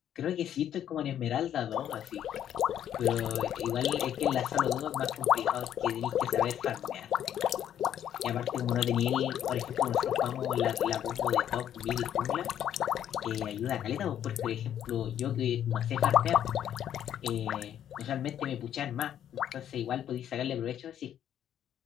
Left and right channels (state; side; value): quieter; right; 10.3 dB